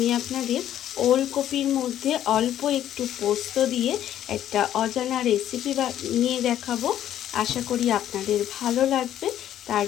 আপনাদের ওলকপির মধ্যে অল্প একটু পোস্ত দিয়ে একটা অজানা রেসিপি নিয়ে দেখাবো। আশা করি আপনাদের ভালো লাগবে। তার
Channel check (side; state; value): right; quieter; 11.4 dB